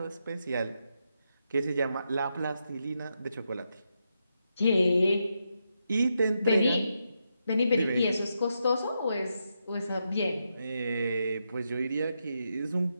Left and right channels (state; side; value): inverted; both; correlation -0.84